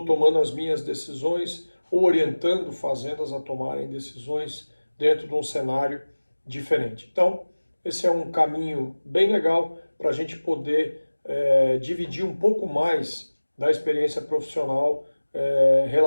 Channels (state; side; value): inverted; both; correlation -1.00